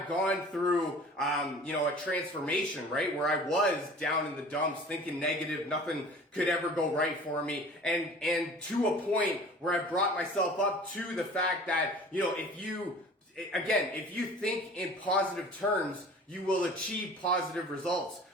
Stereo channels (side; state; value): both; normal; correlation 0.44